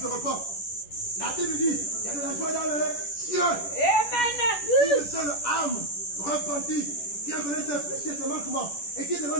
repent. La Bible dit qu'il y a de la joie dans les cieux. Amen. Une seule âme repentie qui a connu ses péchés, ses manquements et qui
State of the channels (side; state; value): right; late; 10 ms